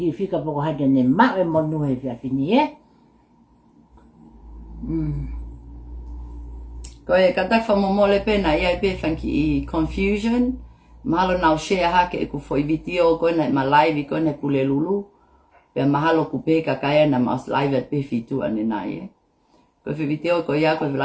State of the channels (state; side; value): identical; both; correlation 1.00